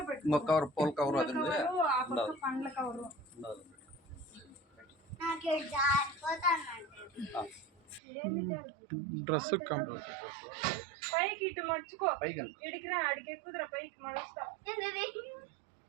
పెట్టు, కవర్ పూల కవర్ అది ఆ పక్క పండ్ల కవర్. డ్రెస్ పైకి ఇటు మర్చుకో, ఇడికిరా అడికి ఎక్కుదరా, పైకి మడుస్తా.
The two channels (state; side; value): drops out; left; at 8.0 s